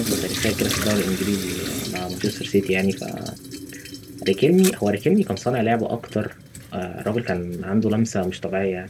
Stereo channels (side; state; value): both; identical; correlation 1.00